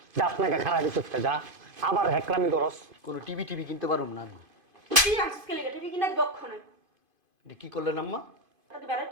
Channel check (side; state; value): left; late; 2.5 ms